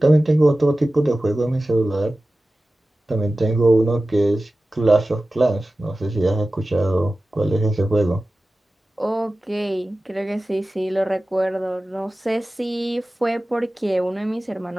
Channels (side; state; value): both; normal; correlation 0.96